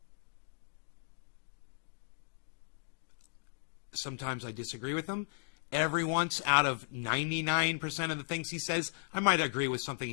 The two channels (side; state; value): right; silent; digital silence